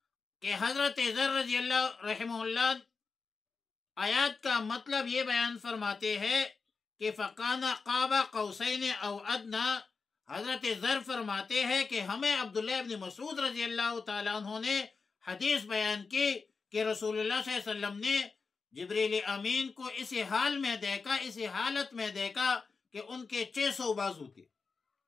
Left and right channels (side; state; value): right; quieter; 4.7 dB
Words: کہ حضرت ذر رضی اللہ رحمہ اللہ آیات کا مطلب یہ بیان فرماتے ہیں کہ فَقَانَ قَابَ قَوْسَيْنِ أَوْ أَدْنَىٰ، حضرت ذر فرماتے ہیں کہ ہمیں عبداللہ ابن مسعود رضی اللہ تعالیٰ عنہ نے حدیث بیان کی کہ رسول اللہ صلی اللہ علیہ وسلم نے جبریل امین کو اسی حال میں دیکھا، اسی حالت میں دیکھا کہ ان کے 600 بازو تھے۔